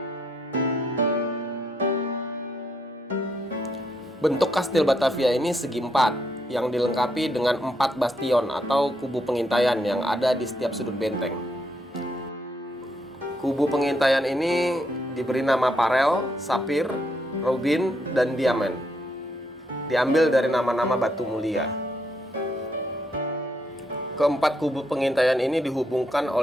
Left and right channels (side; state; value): both; normal; correlation 0.76